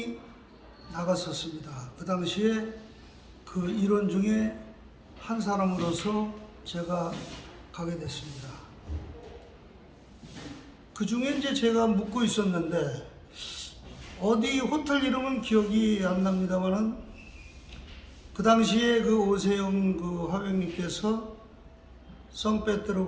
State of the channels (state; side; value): identical; both; correlation 1.00